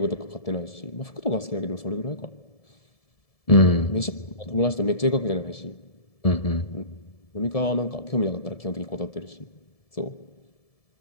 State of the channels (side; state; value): right; late; 1.7 ms